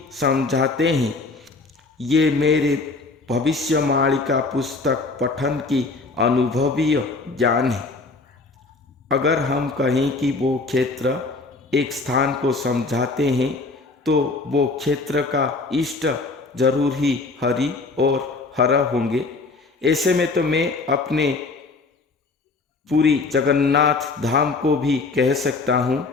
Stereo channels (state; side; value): quieter; right; 3.8 dB